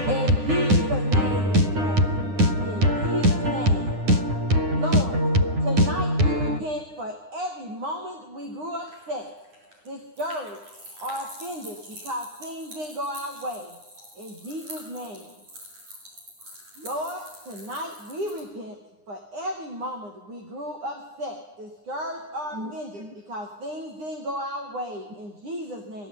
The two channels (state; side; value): late; left; 9.8 ms